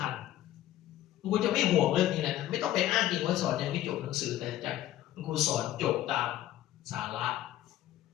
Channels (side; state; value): right; quieter; 13.6 dB